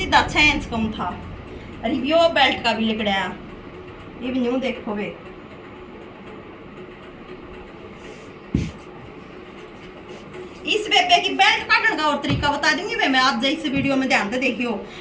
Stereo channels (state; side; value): identical; both; correlation 1.00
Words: 6 इंच कम था। अरे यो बेल्ट का भी लिकड़ाया, इवन्यू देखो वे। इस बेबे की बेल्ट काटने का और तरीका बता दूंगी मैं आज इस वीडियो में, ध्यान से देखियो।